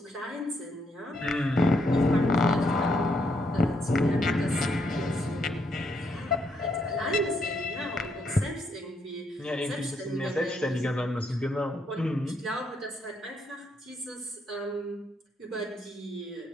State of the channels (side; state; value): both; normal; correlation 0.75